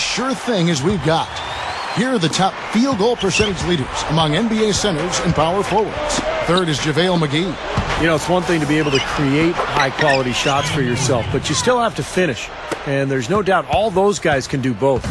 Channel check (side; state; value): both; identical; correlation 1.00